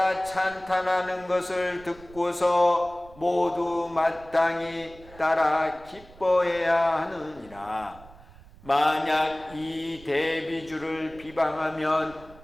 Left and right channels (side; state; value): right; noise; rumble, 22 dB below the sound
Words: 찬탄하는 것을 듣고서 모두 마땅히 따라 기뻐해야 하느니라. 만약 이 대비주를